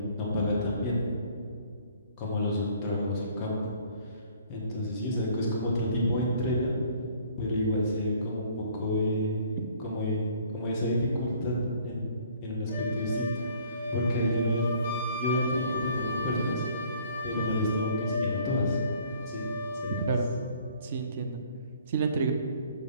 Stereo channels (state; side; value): inverted; both; correlation -0.57